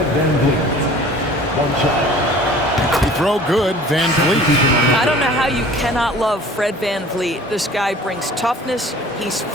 Van Vliet. 1 shot. He throw good, Van Vliet. I don't know how you cannot love Fred Van Vliet. This guy brings toughness. He's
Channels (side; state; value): both; normal; correlation 0.47